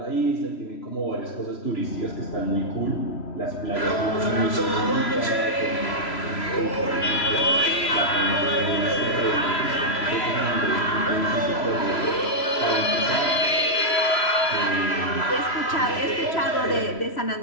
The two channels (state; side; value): late; right; 3.0 ms